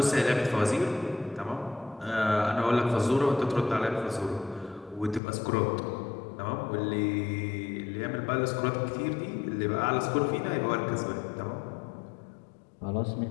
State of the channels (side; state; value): right; drops out; at 5.2 s